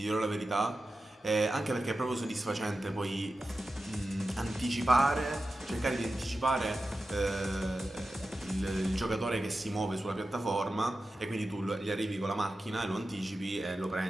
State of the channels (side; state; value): both; normal; correlation 0.92